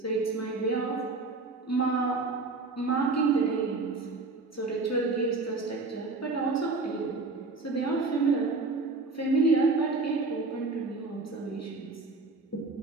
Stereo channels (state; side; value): quieter; left; 3.7 dB